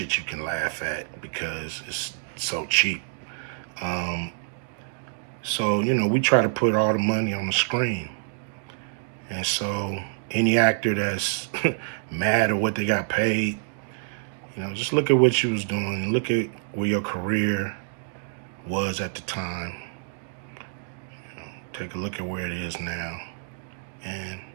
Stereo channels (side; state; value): left; silent; digital silence